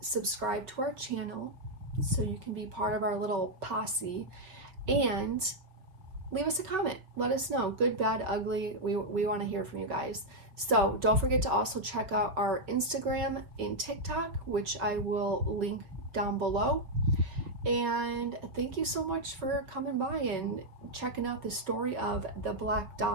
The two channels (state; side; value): late; left; 5.2 ms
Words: subscribe to our channel so you can be part of our little posse, and leave us a comment. Let us know, good, bad, ugly. We want to hear from you guys. So don't forget to also check out our Instagram and TikTok, which I will link down below. And thank you so much for coming by and checking out the story of the Black